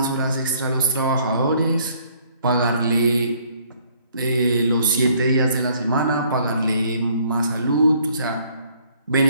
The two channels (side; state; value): both; inverted; correlation -0.62